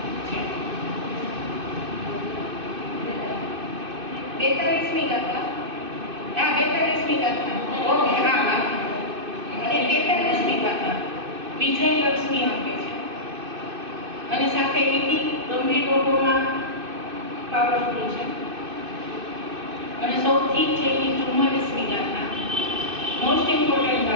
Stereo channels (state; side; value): late; left; 2.6 ms